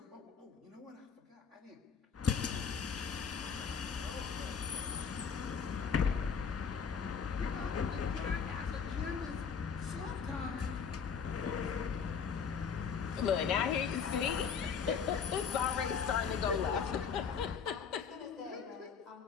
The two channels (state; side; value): quieter; right; 6.4 dB